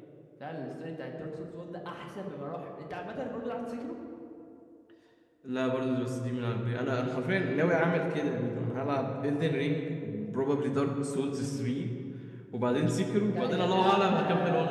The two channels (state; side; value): identical; both; correlation 1.00